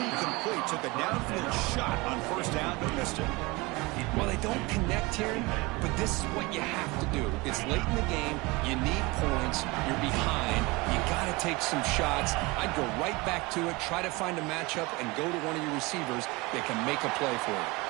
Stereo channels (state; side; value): quieter; left; 23.5 dB